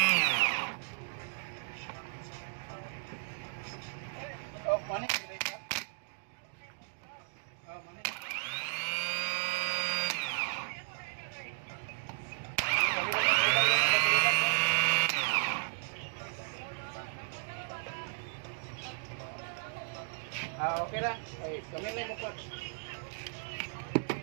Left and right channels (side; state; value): left; silent; digital silence